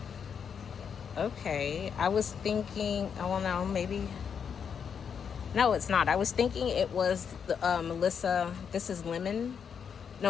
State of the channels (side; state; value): right; quieter; 7.1 dB